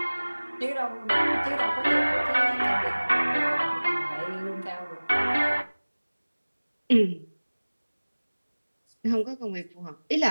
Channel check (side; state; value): both; inverted; correlation -1.00